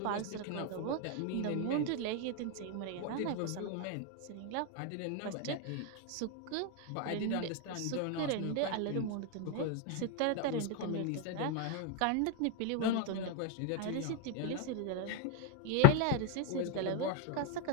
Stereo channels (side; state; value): both; different; correlation 0.01